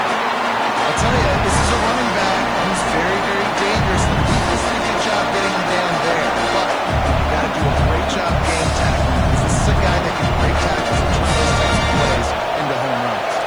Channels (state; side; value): noise; left; hiss, 30 dB below the sound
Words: tell you, this is a running back who's very, very dangerous. The defense did a good job getting him down there. But you got to do a great job game tackling. This is a guy that can break tackles and turn those types of plays into home runs.